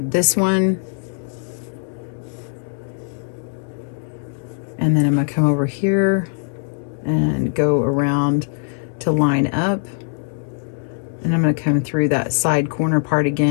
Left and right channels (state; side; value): silent; right; 65 dB below the other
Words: one, and then I'm going to come over here and go around to line up, and I'm going to come through that side corner part